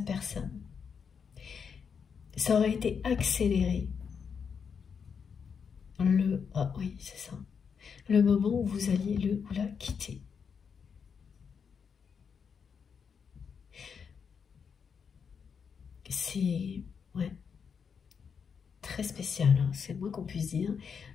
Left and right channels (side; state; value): right; quieter; 6.5 dB